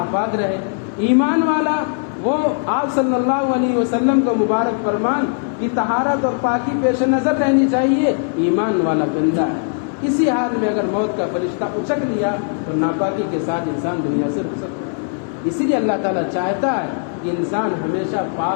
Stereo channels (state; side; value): silent; right; digital silence